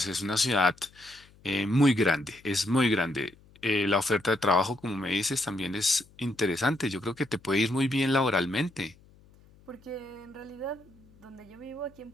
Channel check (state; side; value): noise; left; hum, 27 dB below the sound